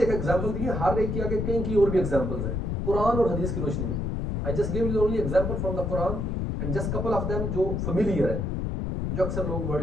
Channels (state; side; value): noise; left; rumble, 1 dB below the sound